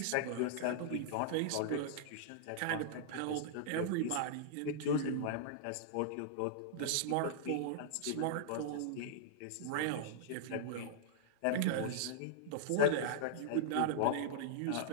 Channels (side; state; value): both; different; correlation -0.02